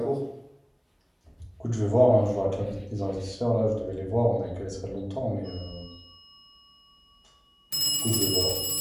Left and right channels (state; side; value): identical; both; correlation 1.00